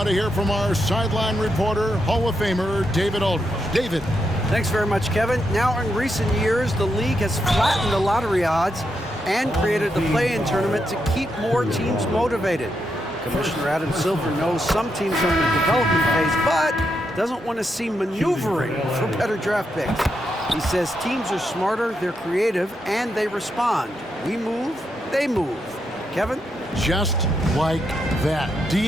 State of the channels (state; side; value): normal; both; correlation 0.82